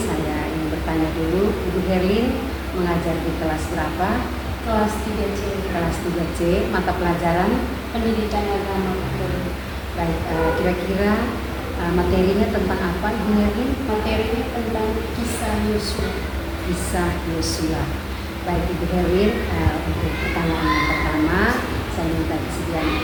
ingin bertanya dulu, Ibu Herlin mengajar di kelas berapa? Kelas 3C. Kelas 3C, mata pelajaran? Pendidikan agama. Baik, kira-kira materinya tentang apa, Ibu Herlin? Materinya tentang kisah Yosua. Kisah Yosua. Baik, Ibu Herlin, untuk pertanyaan yang pertama, saya minta kesediaan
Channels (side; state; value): both; identical; correlation 1.00